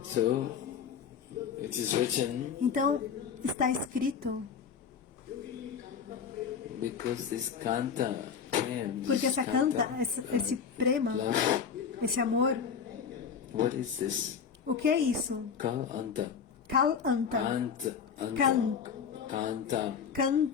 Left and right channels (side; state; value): right; quieter; 6.8 dB